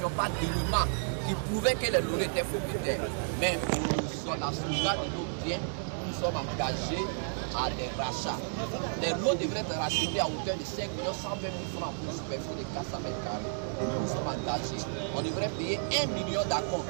pas d'éléments qui prouvaient que les lauréats étaient propriétaires. Mais sur la sauvegarde de nos biens, nous sommes engagés à des rachats. Les lots devraient être rachetés à hauteur de 5 120 000 francs pour une superficie de 400 mètres carrés. Nous sommes engagés. On devrait payer 1 million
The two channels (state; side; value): silent; left; digital silence